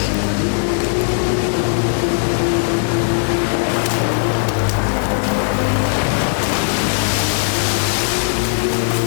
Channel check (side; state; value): right; silent; digital silence